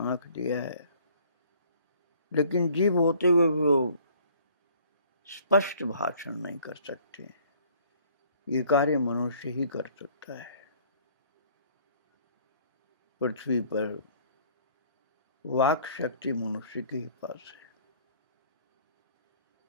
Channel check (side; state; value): both; inverted; correlation -0.56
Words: आंख दिया है, लेकिन जीव होते हुए वो स्पष्ट भाषण नहीं कर सकते। ये कार्य मनुष्य ही कर सकता है। पृथ्वी पर वाक शक्ति मनुष्य के ही पास है